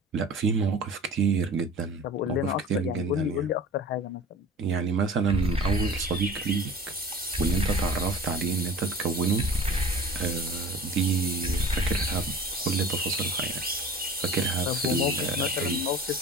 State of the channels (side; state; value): both; normal; correlation 0.40